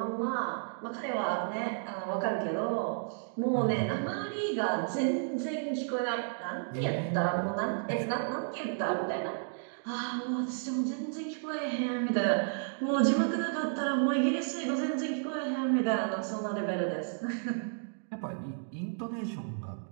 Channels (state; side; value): silent; left; digital silence